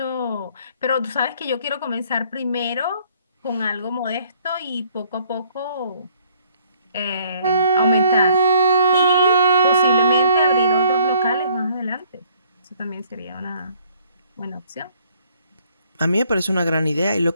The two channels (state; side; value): inverted; both; correlation -0.62